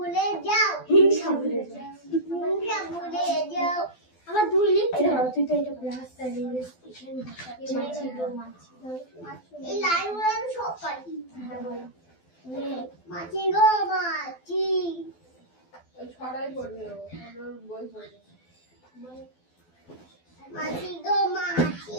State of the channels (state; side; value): late; right; 12 ms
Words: যাও, হিংসা ভুলে যাও, হিংসা ভুলে যাও। আমার দুই লিখতে হবে, তুই তো এটা রাস্তায় স্টেশন মাছি গো মাছি, এই লাইনগুলো আমি সব পারি। হ্যাঁ বলো, মাছি গো মাছি, ওই ছড়াই পড়বে, ওর বই পড়বে। মাছি গো মাছি